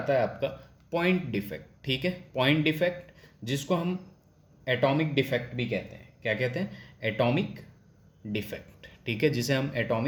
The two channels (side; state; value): both; identical; correlation 1.00